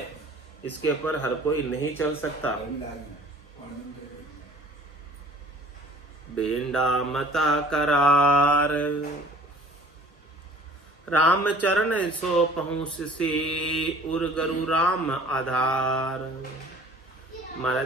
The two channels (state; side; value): normal; both; correlation 0.49